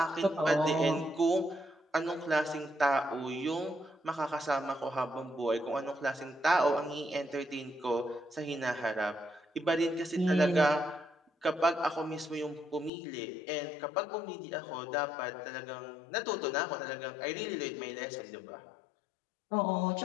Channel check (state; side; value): drops out; right; at 12.9 s